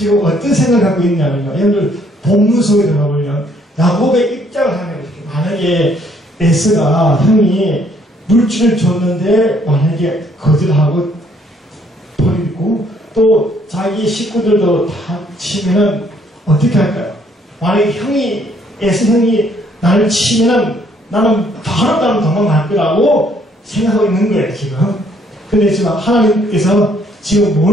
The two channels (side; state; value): both; normal; correlation 0.66